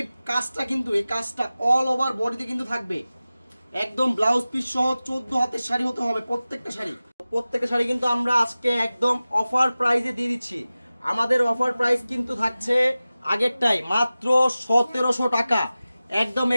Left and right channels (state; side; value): inverted; both; correlation -0.96